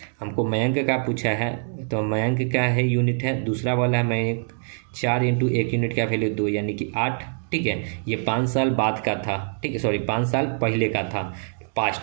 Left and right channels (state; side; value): silent; left; digital silence